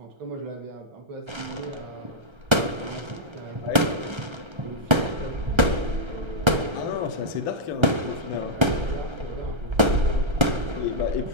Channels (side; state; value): left; late; 1.3 ms